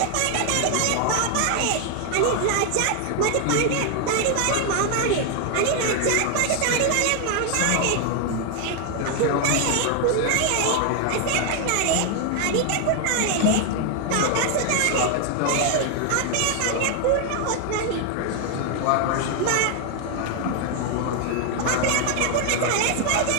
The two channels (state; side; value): different; both; correlation 0.00